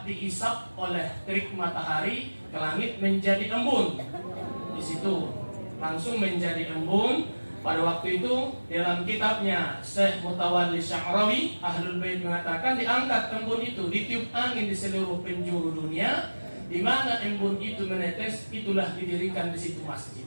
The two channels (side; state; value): both; inverted; correlation -1.00